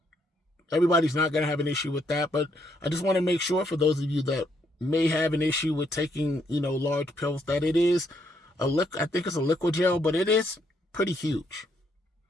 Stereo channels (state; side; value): normal; both; correlation 0.73